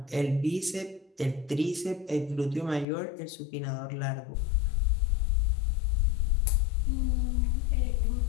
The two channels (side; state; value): right; drops out; at 2.9 s